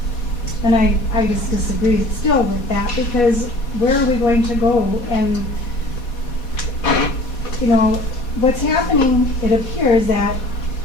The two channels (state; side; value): late; right; 4.2 ms